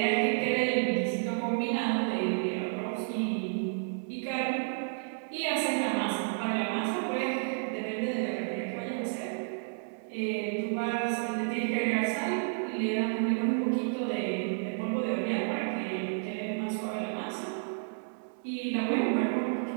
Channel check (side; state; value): left; silent; 57 dB below the other